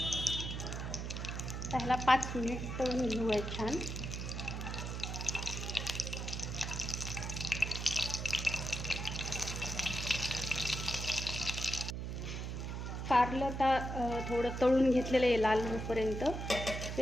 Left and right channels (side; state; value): right; noise; hum, 4 dB below the sound